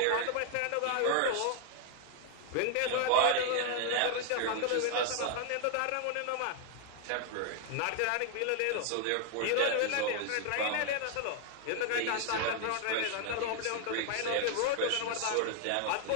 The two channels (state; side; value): different; both; correlation 0.00